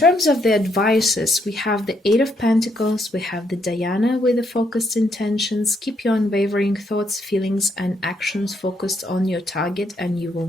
of the advices, we have the 8 of Pentacles, we have the Diana with the focused intentions. Keep your unwavering thoughts, feelings, and actions focused on your target, and you will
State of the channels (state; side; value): normal; both; correlation 0.75